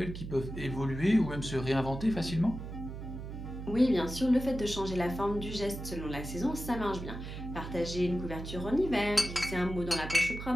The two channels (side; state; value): right; noise; hum, 8 dB below the sound